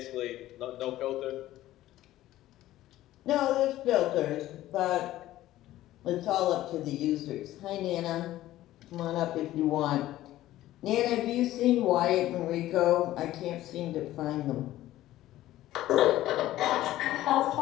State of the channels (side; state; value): right; quieter; 14.8 dB